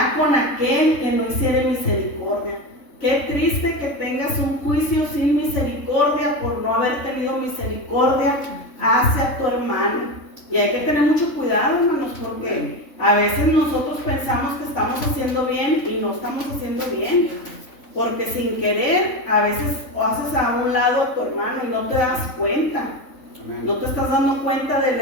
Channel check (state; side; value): late; right; 3.5 ms